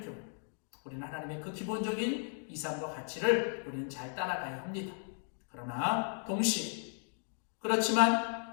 경우 우리는 하나님의 그 기본적인 이상과 가치를 우리는 잘 따라가야 합니다. 그러나 동시에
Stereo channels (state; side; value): silent; right; 54 dB below the other